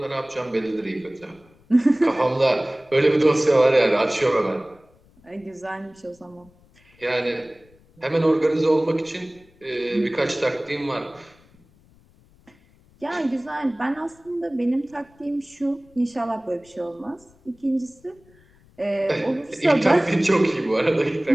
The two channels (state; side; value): noise; left; rumble, 30 dB below the sound